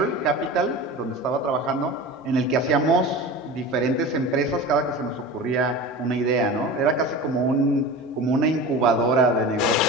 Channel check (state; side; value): normal; both; correlation 0.32